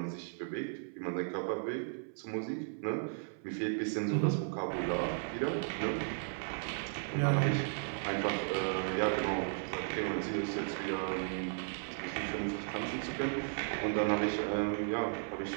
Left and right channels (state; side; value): silent; left; 54 dB below the other